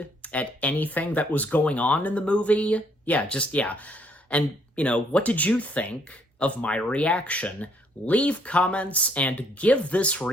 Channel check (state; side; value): normal; both; correlation 0.68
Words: at anything that was going on in the movie? Yeah. And, you know, what did you think of my reaction? Leave comments and give this